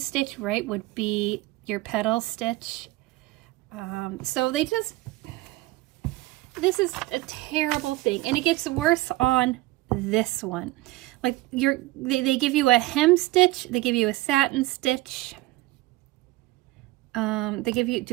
right, would be your petal stitch. So they just, this is a terrible thing, and it gets worse on this one. Like they give you a hem stitch, they give you a satin stitch. They give you,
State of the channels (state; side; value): quieter; left; 19.1 dB